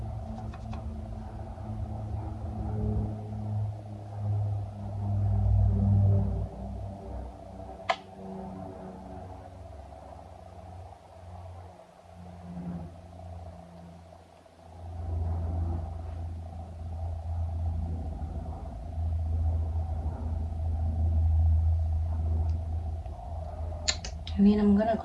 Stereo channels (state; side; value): identical; both; correlation 1.00